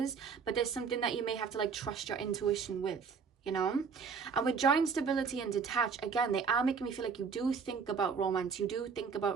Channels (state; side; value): quieter; left; 5.7 dB